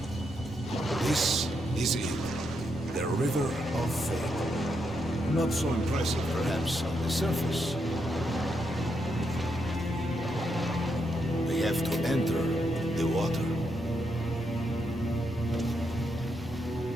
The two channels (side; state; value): both; normal; correlation 0.80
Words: This is it. The River of Fate. Not so impressive, perhaps, on the surface. We have to enter the water.